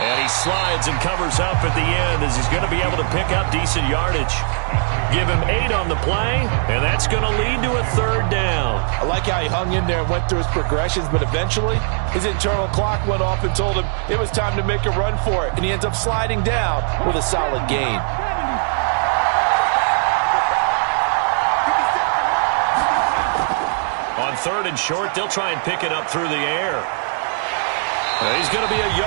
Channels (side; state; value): left; silent; 62 dB below the other